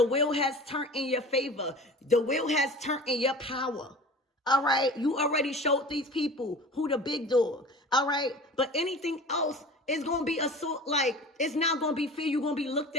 wheel has turned in your favor. The wheel has turned in your power. All right, you already showed these people who the big dog. All right, but anything else is going to be it's not going to be fair. You're going to be looked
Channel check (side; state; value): both; normal; correlation 0.39